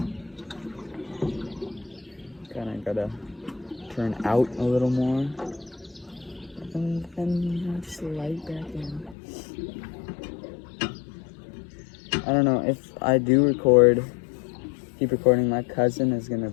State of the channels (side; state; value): right; drops out; at 9.2 s